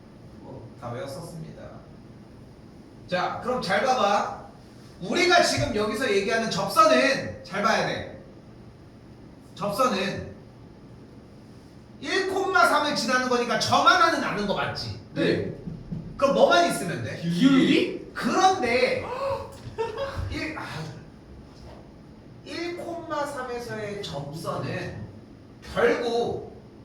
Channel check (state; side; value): identical; both; correlation 1.00